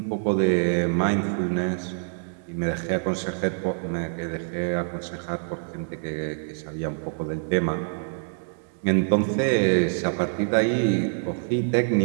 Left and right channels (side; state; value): left; silent; 59 dB below the other